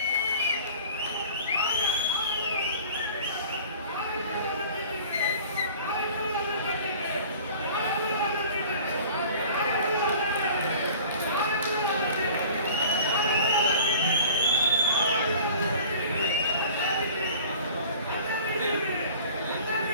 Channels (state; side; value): inverted; both; correlation -0.44